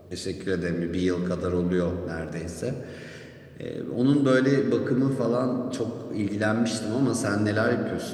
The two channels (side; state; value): both; identical; correlation 1.00